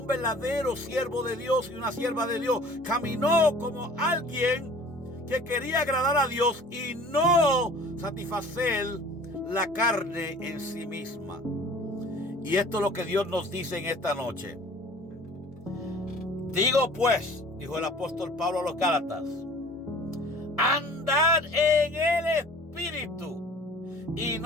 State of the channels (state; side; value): normal; both; correlation 0.47